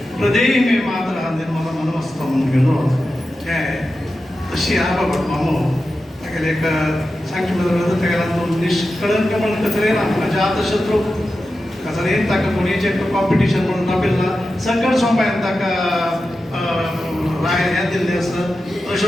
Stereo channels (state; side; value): normal; both; correlation 0.92